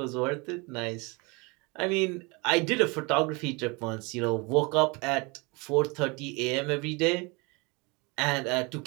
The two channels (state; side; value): quieter; left; 27.9 dB